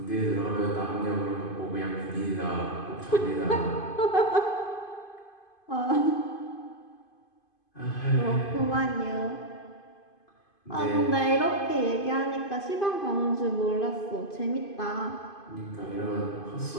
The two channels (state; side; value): late; right; 2.5 ms